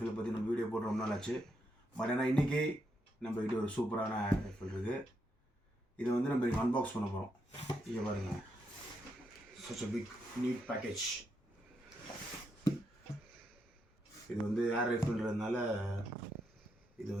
பற்றி நம்ம வீடியோ போட்டு ரொம்ப நாள் ஆச்சு. பட் ஆனால் இன்றைக்கி நம்ம கிட்ட ஒரு சூப்பரான ஏர் ரைஃபிள் இருக்குது. இதை வந்து நம்ம இங்கே அன்பாக்ஸ் பண்ண போகிறோம். இங்கே பாருங்கள், such a big neat package. இது வந்து ஏர் ரைஃபிள்ன்றதுனால இது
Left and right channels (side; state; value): both; normal; correlation 0.80